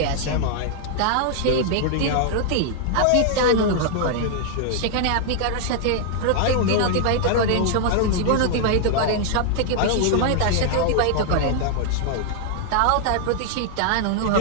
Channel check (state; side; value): different; both; correlation 0.00